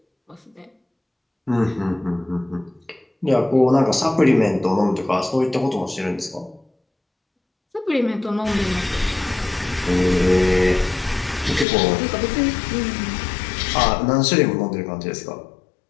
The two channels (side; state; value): right; drops out; at 11.7 s